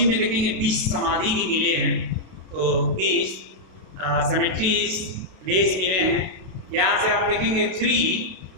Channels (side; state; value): left; late; 32 ms